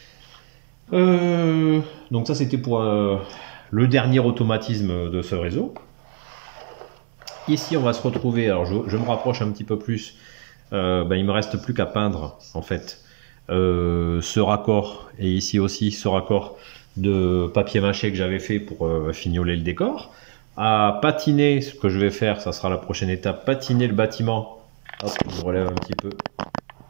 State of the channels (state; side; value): silent; left; 64 dB below the other